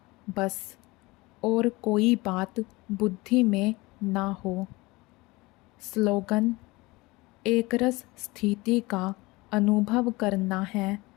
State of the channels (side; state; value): right; quieter; 22.4 dB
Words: बस, और कोई बात बुद्धि में ना हो। स्लोगन। एक रस स्थिति का अनुभव करना है